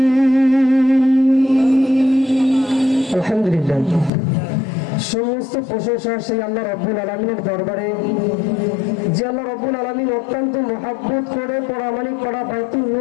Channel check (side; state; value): right; drops out; at 4.1 s